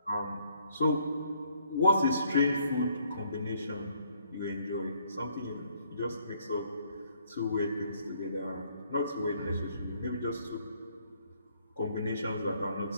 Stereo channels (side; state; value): both; inverted; correlation -0.66